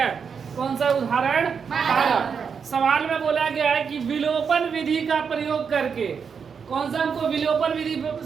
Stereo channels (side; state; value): left; quieter; 6.3 dB